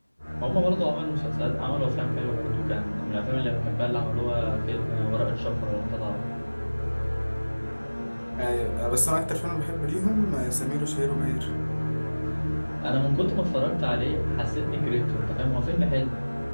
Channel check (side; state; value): both; inverted; correlation -1.00